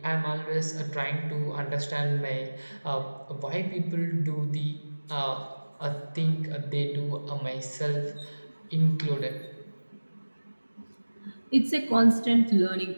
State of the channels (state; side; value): inverted; both; correlation -1.00